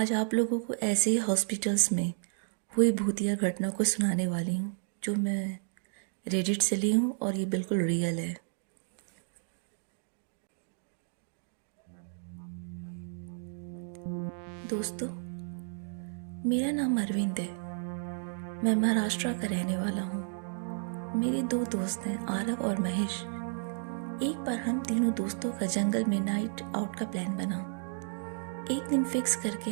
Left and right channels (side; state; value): left; silent; digital silence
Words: आप लोगों को ऐसे ही हॉस्पिटल्स में हुई भूतिया घटना को सुनाने वाली हूँ, जो मैं रेडिट से ली हूँ और ये बिल्कुल रियल है। दोस्तों, मेरा नाम अरविंद है। मैं महाराष्ट्र का रहने वाला हूँ। मेरे दो दोस्त हैं, आरव और महेश। एक बार हम तीनों दोस्तों का जंगल में नाइट आउट का प्लान बना। एक दिन फिक्स करके